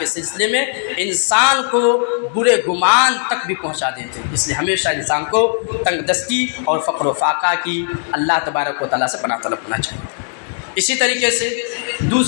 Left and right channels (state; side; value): silent; right; 67 dB below the other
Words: سلسلے میں انسان کو برے گمان تک بھی پہنچا دیتے ہیں۔ اس لیے ہمیشہ انسان کو تنگ دستی اور فقر و فاقہ کی اللہ تبارک و تعالیٰ سے پناہ طلب کرنا چاہیے۔ اسی طریقے سے